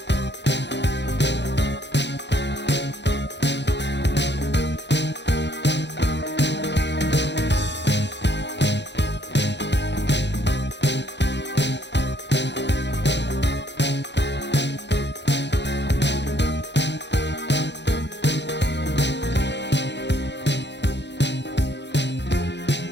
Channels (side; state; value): right; late; 0.51 ms